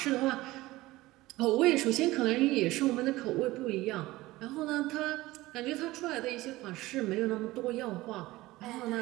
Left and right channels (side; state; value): left; quieter; 18.6 dB